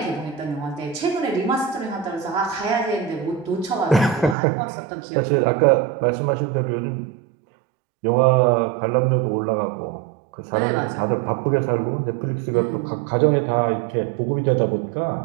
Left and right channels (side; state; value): left; drops out; at 4.4 s